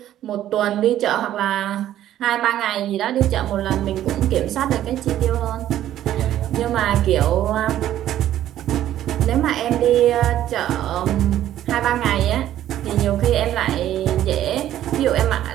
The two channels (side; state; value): left; quieter; 12.3 dB